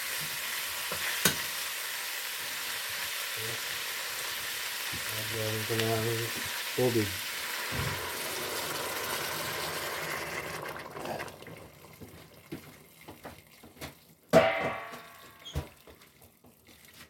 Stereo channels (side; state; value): both; identical; correlation 1.00